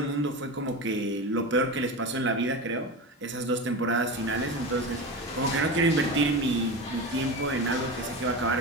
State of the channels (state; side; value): normal; both; correlation 0.25